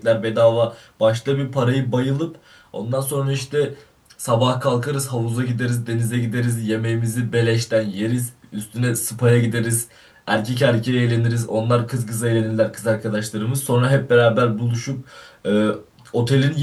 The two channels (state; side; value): identical; both; correlation 1.00